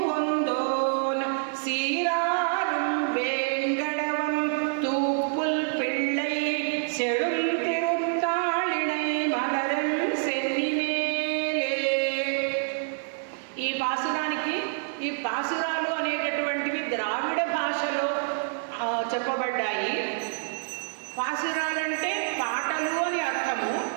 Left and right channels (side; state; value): left; silent; digital silence